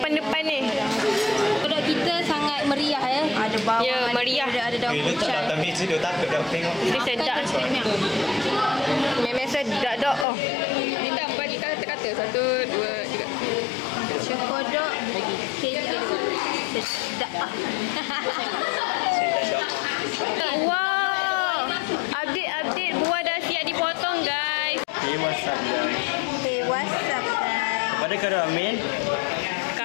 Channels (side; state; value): right; drops out; at 10.2 s